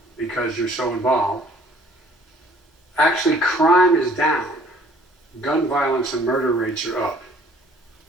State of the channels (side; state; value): both; normal; correlation 0.56